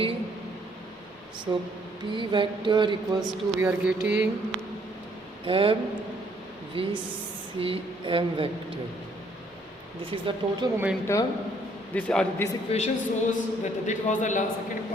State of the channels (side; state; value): both; normal; correlation 0.66